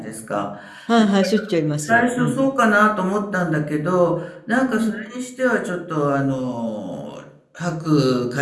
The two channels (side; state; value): both; identical; correlation 1.00